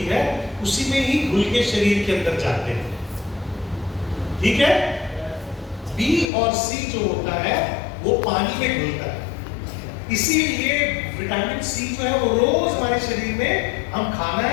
है, उसी में ही घुल के शरीर के अंदर जाते हैं। ठीक है, बी और सी जो होता है वो पानी में घुलता है। इसीलिए विटामिन सी जो है वो रोज हमारे शरीर में हम खाना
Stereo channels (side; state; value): right; drops out; at 6.3 s